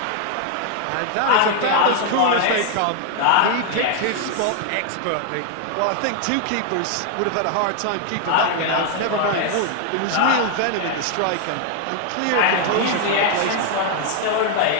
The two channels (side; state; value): both; different; correlation 0.00